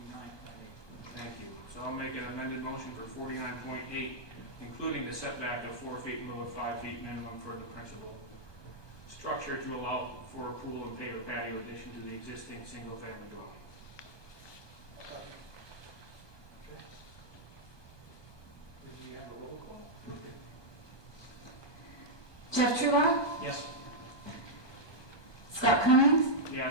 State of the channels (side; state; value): right; late; 1.2 ms